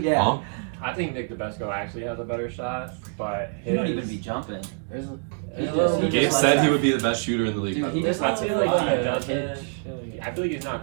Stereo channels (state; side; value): silent; left; 61 dB below the other